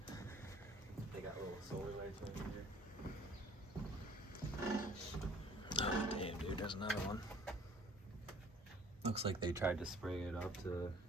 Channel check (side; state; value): both; normal; correlation 0.54